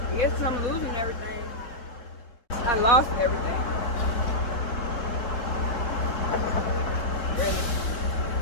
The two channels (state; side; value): late; right; 4.2 ms